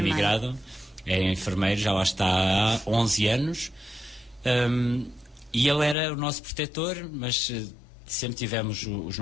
É enfermeiro, já lá está há 11 anos. E ele era o nosso protetor, mas sempre tivemos os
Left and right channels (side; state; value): right; drops out; at 6.0 s